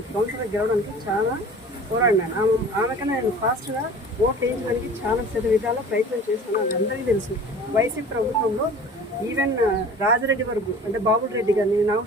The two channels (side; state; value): both; normal; correlation 0.43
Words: కౌన్సిలర్ గెలవడానికి చాలా పోరాడినాను. ఆమెకన్నా నేను ఫాస్ట్గా ఓట్ వేయించడానికి చాలా విధాల ప్రయత్నం చేస్తున్నాను. అది అందరికీ తెలుసు. వైసీపీ ప్రభుత్వంలో ఈవెన్ రాజరెడ్డి వరకు అంటే బాబుల్ రెడ్డి కానీ